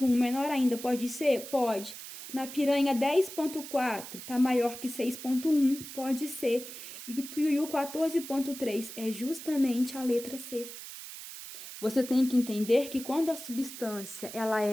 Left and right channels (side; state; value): right; noise; hiss, 12 dB below the sound